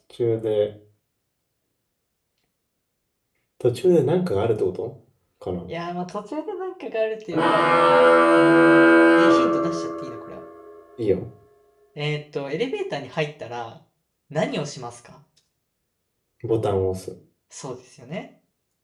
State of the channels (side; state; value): both; identical; correlation 1.00